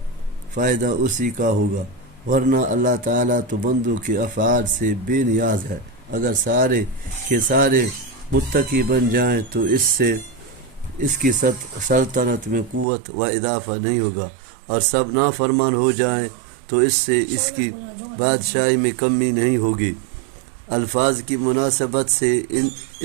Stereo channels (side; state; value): left; drops out; at 12.9 s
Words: فائدہ اسی کا ہوگا، ورنہ اللہ تعالیٰ تو بندوں کے افعال سے بے نیاز ہے۔ اگر سارے کے سارے متقی بن جائیں تو اس کی سلطنت میں قوت و اضافہ نہیں ہوگا، اور سب نافرمان ہو جائیں تو اس سے اس کی بادشاہی میں کمی نہیں ہوگی۔ الفاظ کی مناسبت سے